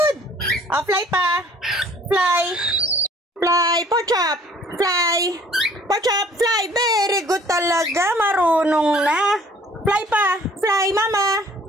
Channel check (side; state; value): both; normal; correlation 0.55